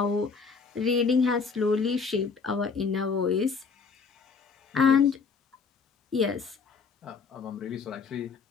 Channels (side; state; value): right; quieter; 5.2 dB